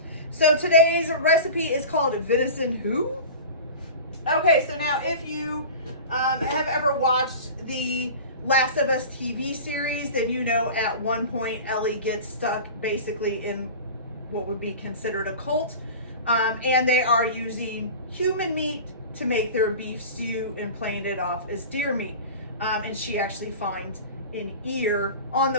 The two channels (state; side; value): inverted; both; correlation -0.34